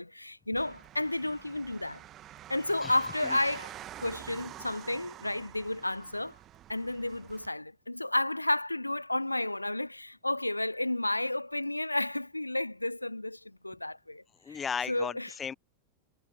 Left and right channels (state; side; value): inverted; both; correlation -0.91